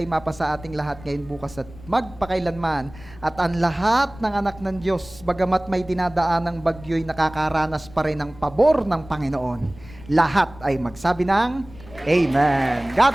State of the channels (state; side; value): noise; left; rumble, 19 dB below the sound